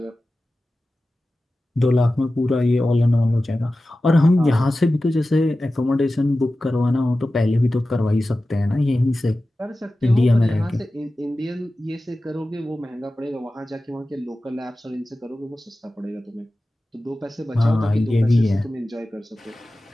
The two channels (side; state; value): both; normal; correlation 0.95